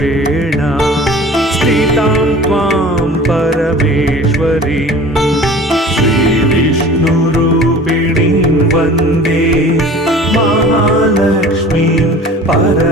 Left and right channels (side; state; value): both; normal; correlation 0.43